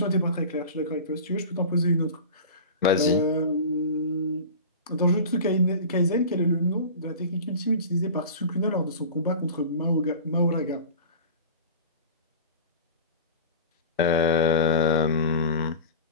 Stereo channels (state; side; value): inverted; both; correlation -0.35